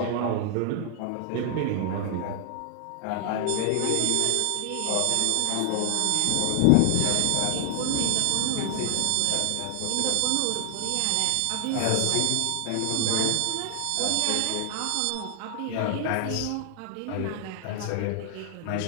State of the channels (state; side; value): different; both; correlation 0.00